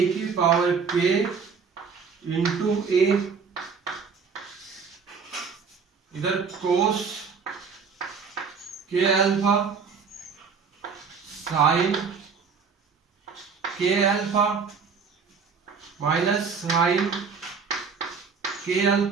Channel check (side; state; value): left; quieter; 5.6 dB